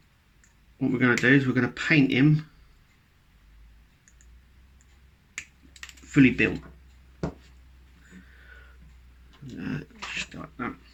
what we're going to do is we're going to paint him fully built. Just like that.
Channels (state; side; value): identical; both; correlation 1.00